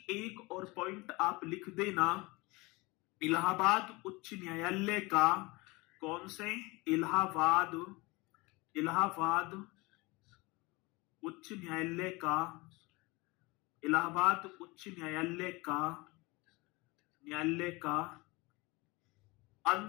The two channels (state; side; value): quieter; right; 24.1 dB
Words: एक और पॉइंट आप लिख देना, इलाहाबाद उच्च न्यायालय का, कौन से? इलाहाबाद उच्च न्यायालय का, इलाहाबाद उच्च न्यायालय का